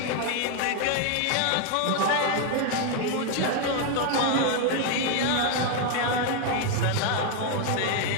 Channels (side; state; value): both; different; correlation 0.01